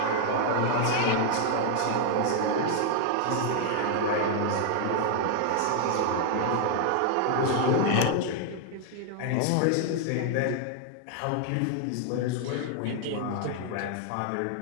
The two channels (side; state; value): both; different; correlation 0.00